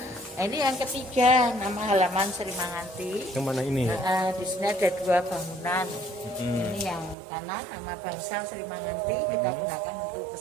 Nah, ini yang ketiga nama halaman Srimanganti. Yang mana ini? Di sini ada 2 bangunan. Ini yang kanan nama Bangsal Srimanganti, kita gunakan untuk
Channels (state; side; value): drops out; left; at 7.2 s